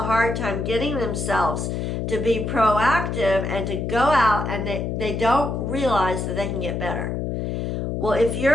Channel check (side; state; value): left; noise; hum, 2 dB below the sound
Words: hard time getting themselves to be proactive and to go out, and they don't realize that they can get better. Well, if